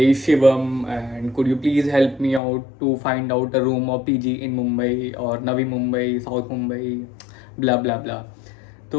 Shivam and could you please help me out to find out a room और पीजी इन मुंबई और Navi Mumbai, south Mumbai, blah blah blah.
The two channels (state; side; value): drops out; right; at 2.4 s